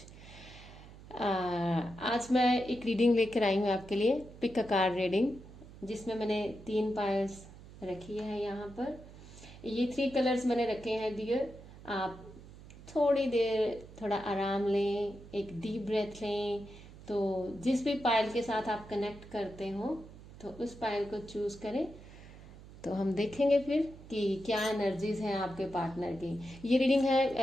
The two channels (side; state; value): right; noise; hum, 18 dB below the sound